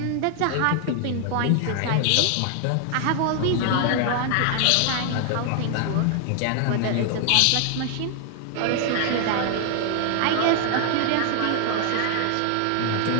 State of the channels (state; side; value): different; both; correlation 0.00